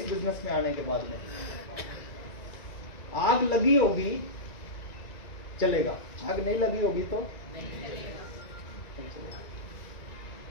बिजनेस में आने के बाद में। आग लगी होगी चलेगा, आग नहीं लगी होगी तो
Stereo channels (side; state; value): right; late; 1.9 ms